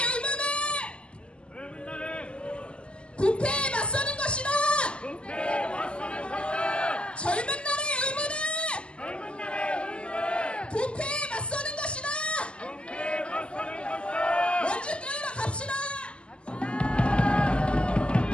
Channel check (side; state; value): right; late; 0.052 ms